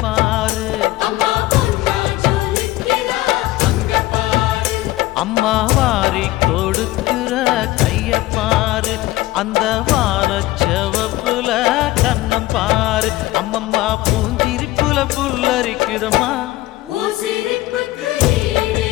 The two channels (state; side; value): quieter; right; 17.4 dB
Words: பாரு, அம்மா வாரி கொடுக்கிற கைய பாரு, அந்த வானச்சவப்புல கண்ணம் பாரு, அம்மம்மா பூஞ்சிரிப்புல புல்லரிக்குதம்மா,